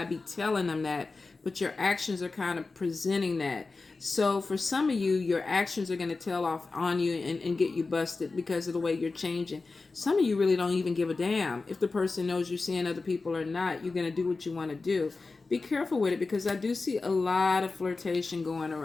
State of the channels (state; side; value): quieter; right; 3.8 dB